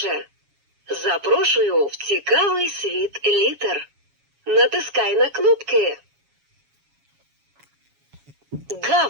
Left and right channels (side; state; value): left; late; 7.2 ms